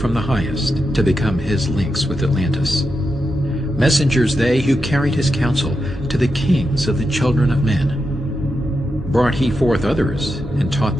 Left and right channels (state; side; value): normal; both; correlation 0.87